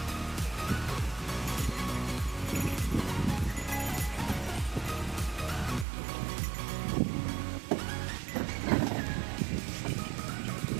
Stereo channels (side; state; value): left; drops out; at 5.9 s